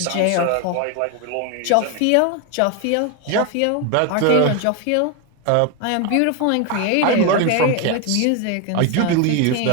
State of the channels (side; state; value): both; different; correlation 0.01